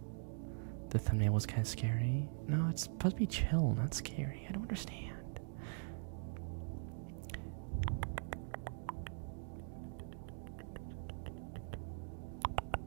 The thumbnail was kind of scary. No, it's supposed to be chill, not scary. I don't understand.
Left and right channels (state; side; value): silent; left; digital silence